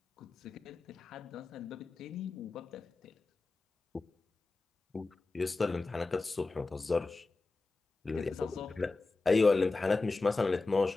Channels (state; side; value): quieter; right; 3.5 dB